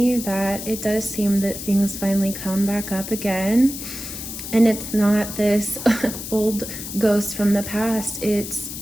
that it does seem that things finally come back up again. And it's not this old ghost from the past. It's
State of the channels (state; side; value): noise; left; hiss, 8 dB below the sound